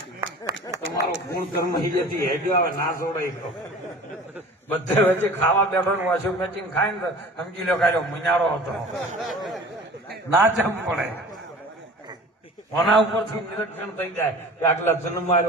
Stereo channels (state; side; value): normal; both; correlation 0.42